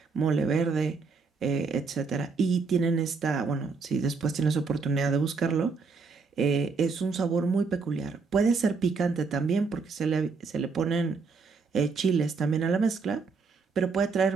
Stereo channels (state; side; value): quieter; left; 4.7 dB